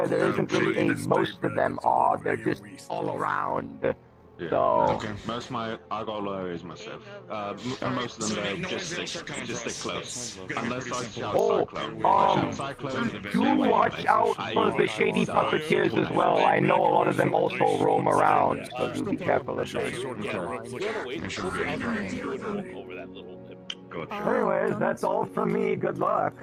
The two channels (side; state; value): both; identical; correlation 1.00